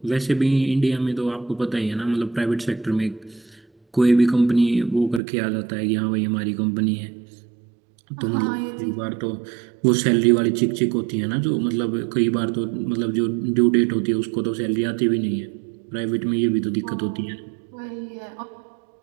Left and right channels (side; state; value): left; drops out; at 5.2 s